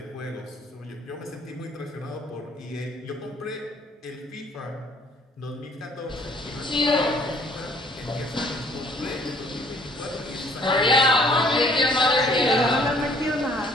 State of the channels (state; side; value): normal; both; correlation 0.59